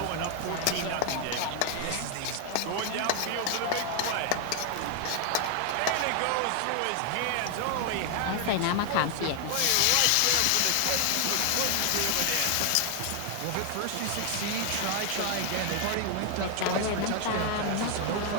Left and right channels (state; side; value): different; both; correlation 0.01